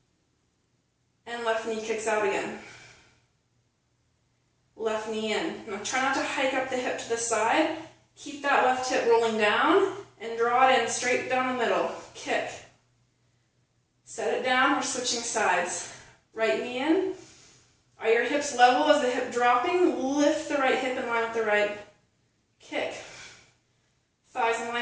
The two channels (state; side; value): identical; both; correlation 1.00